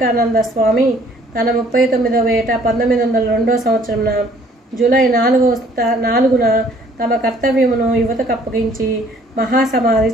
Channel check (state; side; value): normal; both; correlation 0.59